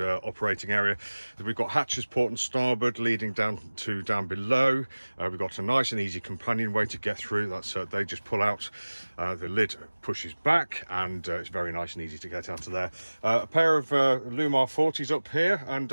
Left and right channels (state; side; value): inverted; both; correlation -1.00